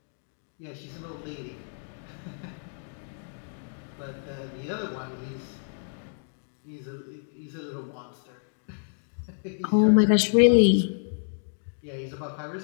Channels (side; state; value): right; silent; digital silence